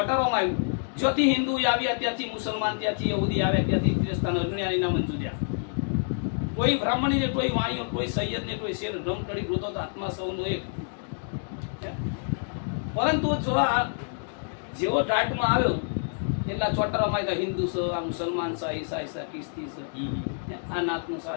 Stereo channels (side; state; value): right; silent; digital silence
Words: આવ્યું. જ્યોથી હિન્દુ આવ્યા ત્યાંથી મુસલમાન, ત્યાંથી યહૂદી આવ્યા ત્યાંથી ક્રિસ્તાન, અજ્ઞાનીના મંજૂર્યા. કોઈ બ્રાહ્મણી ને, કોઈ વાણીઓ, કોઈ સૈયદ ને, કોઈ શેર રમકડી ગોતો તો આત્મા સૌનો એક. પરંતુ જો આ જેવો ટાટમાં આવ્યો એટલા ચોટરામાં આવ્યા હિન્દુ છે, આ મુસલમાન છે, ઈસાઈ છે, ખ્રિસ્તી છે, આ નાતનું છે,